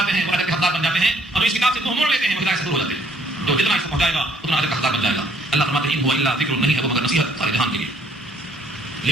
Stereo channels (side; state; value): both; normal; correlation 0.63